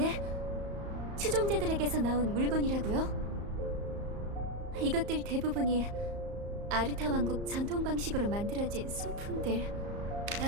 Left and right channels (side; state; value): left; late; 34 ms